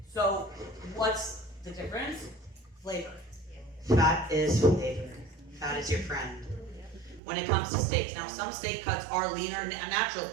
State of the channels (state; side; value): drops out; left; at 7.2 s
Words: So, what's the difference? Flavor. Fat is flavor. Fat is your friend. When it comes to steaks, now some steak cuts are leaner